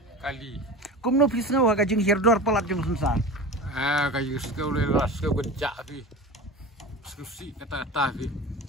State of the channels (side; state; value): both; normal; correlation 0.31